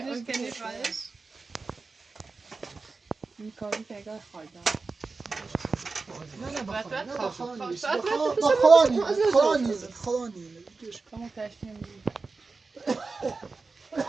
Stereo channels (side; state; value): left; quieter; 4.1 dB